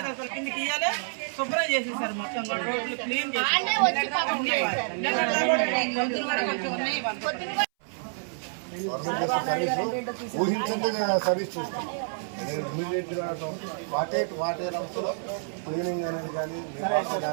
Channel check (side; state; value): left; silent; 59 dB below the other